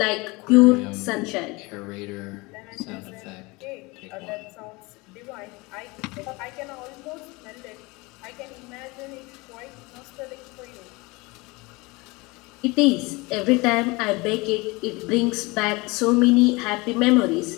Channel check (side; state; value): right; quieter; 24.7 dB